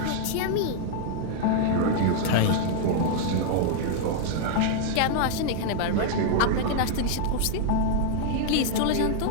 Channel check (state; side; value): different; both; correlation 0.00